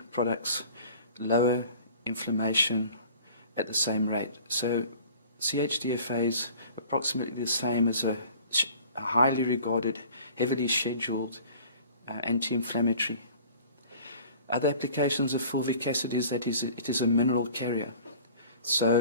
products lower inflammation at the same rate. So CHDFA is approximately the same as a highly regarded, heavily scheduled anti-inflammatory. Other applications of fulvic acid is that it is a mineral carrier. So,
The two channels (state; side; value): inverted; both; correlation -0.46